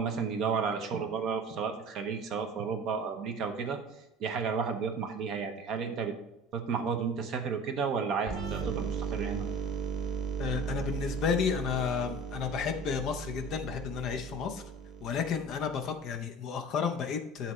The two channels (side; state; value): both; normal; correlation 0.40